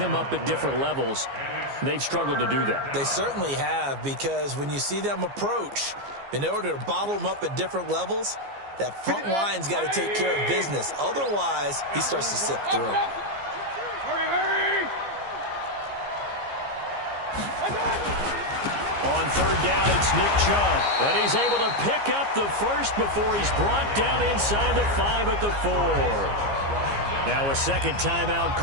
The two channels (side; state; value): left; late; 15 ms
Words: up at different levels. They've struggled to do that. They certainly have, because when you see them approach, in order to bottle them up at different levels, that front line's got to take care of business. Otherwise, he starts to slip through. Hurry, hurry. On third down, it's Nick Chubb. And he's able to pick up the first before he's brought down inside the 5 at the 4. Now a second timeout